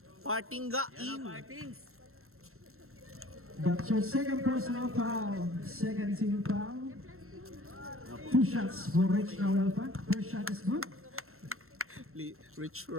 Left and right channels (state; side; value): late; left; 0.62 ms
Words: Partingga in. Martins. That's your second personal foul. Second team foul. 2 shots for Rich Nahuelpa. First shot is good. Rich